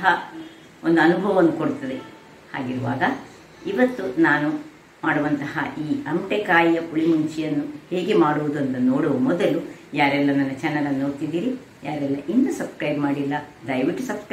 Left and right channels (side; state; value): both; identical; correlation 1.00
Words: ಒಂದು ಅನುಭವವನ್ನು ಕೊಡ್ತದೆ. ಹಾಗಿರುವಾಗ ಇವತ್ತು ನಾನು ಮಾಡುವಂತಹ ಈ ಅಮಟೆಕಾಯಿಯ ಪುಳಿಮುಂಚಿಯನ್ನು ಹೇಗೆ ಮಾಡುವುದು ಅಂತ ನೋಡುವ ಮೊದಲು, ಯಾರೆಲ್ಲ ನನ್ನ ಚಾನಲನ್ನು ನೋಡ್ತಿದ್ದೀರಿ, ಯಾರೆಲ್ಲ ಇನ್ನೂ ಸಬ್ಸ್ಕ್ರೈಬ್ ಮಾಡಿಲ್ಲ, ದಯವಿಟ್ಟು